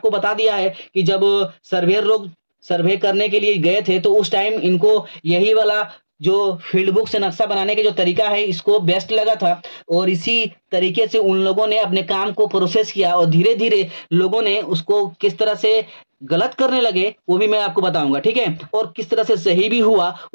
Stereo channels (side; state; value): both; inverted; correlation -1.00